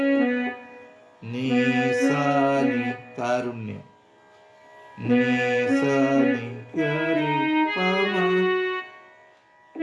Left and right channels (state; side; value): identical; both; correlation 1.00